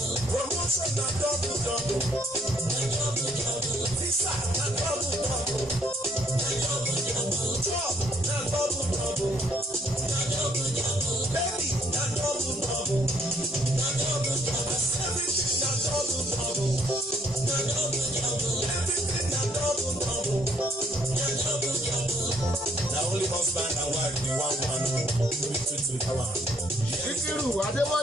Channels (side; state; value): both; normal; correlation 0.67